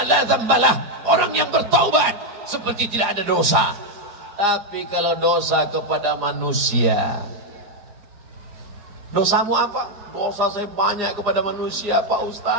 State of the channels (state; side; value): late; left; 4.9 ms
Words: la dzambalah. Orang yang bertaubat seperti tidak ada dosa. Tapi kalau dosa kepada manusia, dosamu apa? Dosa saya banyak kepada manusia, Pak